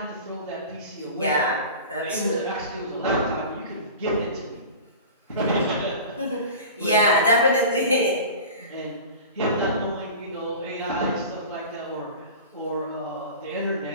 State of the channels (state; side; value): inverted; both; correlation -0.36